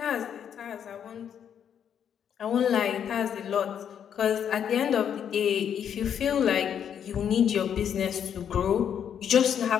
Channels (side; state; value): right; quieter; 8.6 dB